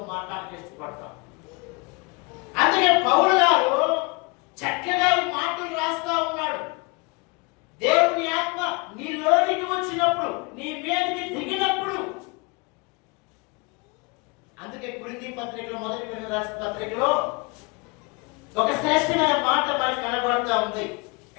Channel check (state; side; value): quieter; right; 28.8 dB